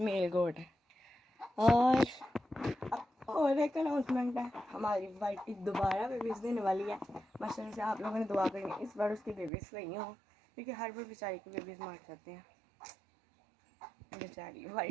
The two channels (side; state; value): left; drops out; at 9.5 s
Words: गोट है। और एक अनाउंसमेंट है, हमारी वाइटी दोबारा बेबीज़ देने वाली है। माशाल्लाह से आप लोगों ने दुआ करनी इस बार उसकी बेबीज़ सही हो, क्योंकि हर बार बेचारी के बेबीज़ मर जाते हैं बेचारी